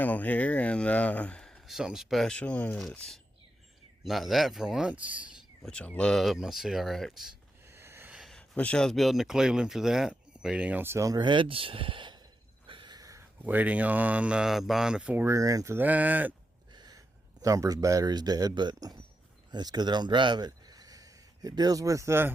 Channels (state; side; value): normal; both; correlation 0.86